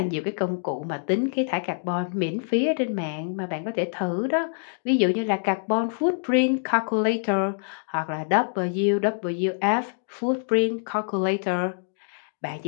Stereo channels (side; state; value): right; silent; digital silence